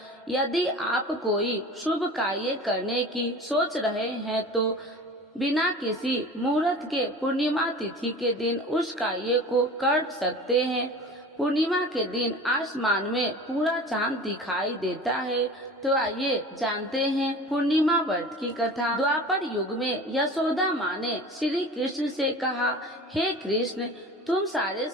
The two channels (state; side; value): normal; both; correlation 0.38